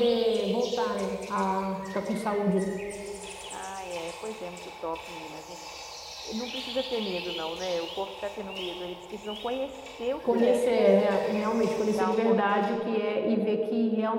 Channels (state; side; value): identical; both; correlation 1.00